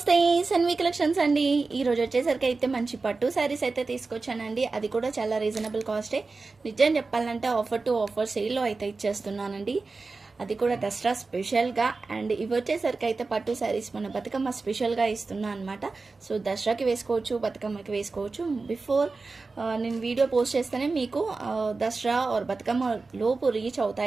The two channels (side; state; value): left; quieter; 3.9 dB